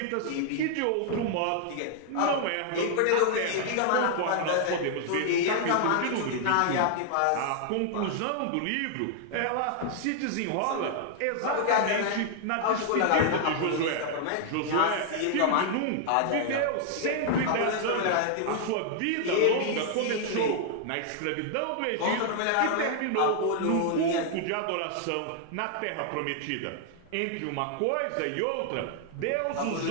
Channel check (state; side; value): different; both; correlation -0.01